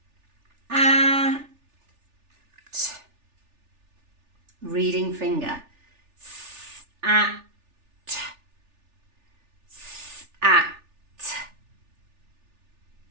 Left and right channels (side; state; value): left; late; 3.4 ms